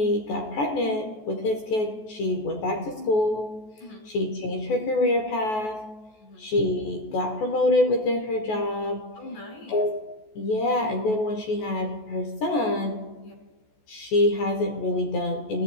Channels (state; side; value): late; right; 14 ms